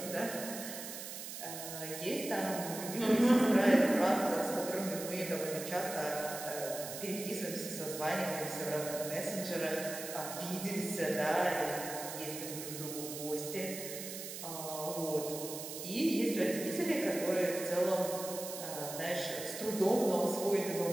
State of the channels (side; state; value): right; noise; hiss, 8 dB below the sound